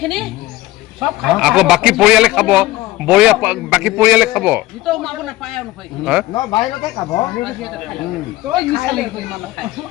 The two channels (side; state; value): right; quieter; 17.4 dB